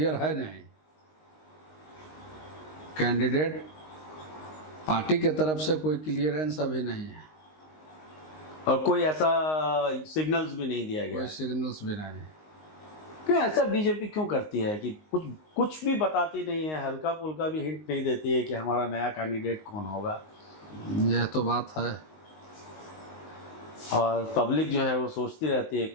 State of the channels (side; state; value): right; late; 19 ms